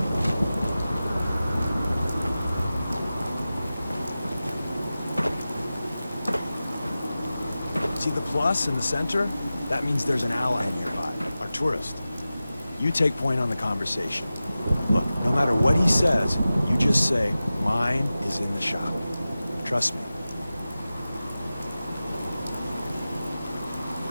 See the plus in the center? That means there's an ally nearby, our tourist. You take point on the conversation. Look, no matter what he says, you just say, mine is in the shop. Trust me.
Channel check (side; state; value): both; inverted; correlation -0.95